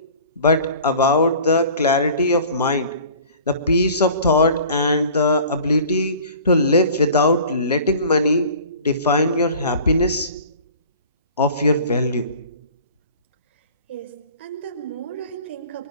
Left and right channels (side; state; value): both; inverted; correlation -0.45